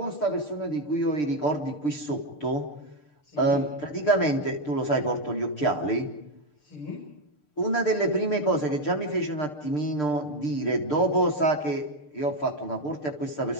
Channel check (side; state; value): right; late; 6.7 ms